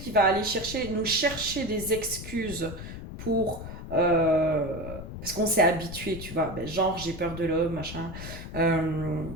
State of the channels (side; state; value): left; noise; rumble, 10 dB below the sound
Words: va aller nous chercher des excuses pour... parce qu'on s'est habitué, tu vois, ben, genre j'ai peur de l'homme, machin. Euh,